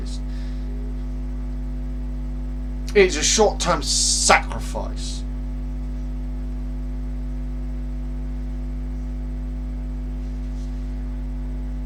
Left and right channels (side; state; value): both; identical; correlation 1.00